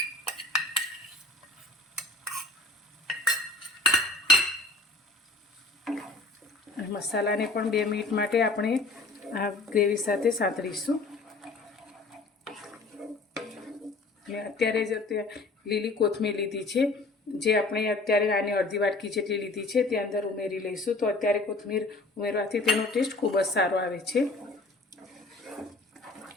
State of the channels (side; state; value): right; quieter; 3.2 dB